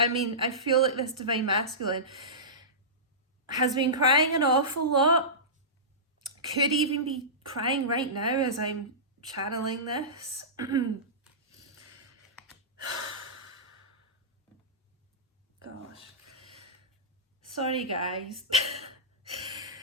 mean, I feel like this divine masculine has been crying an awful lot. Could even be crying right now as I'm channeling this. Gosh. Sorry, guys.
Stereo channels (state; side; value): normal; both; correlation -0.19